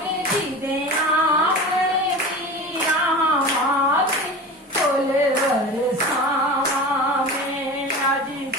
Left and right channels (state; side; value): normal; both; correlation 0.32